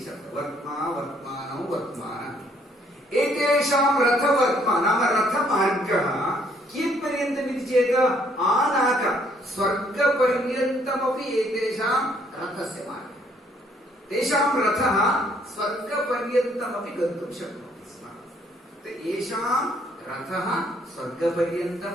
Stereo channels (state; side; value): normal; both; correlation 0.66